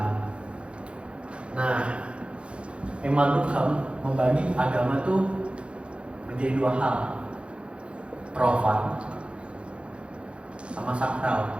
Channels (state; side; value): late; left; 0.059 ms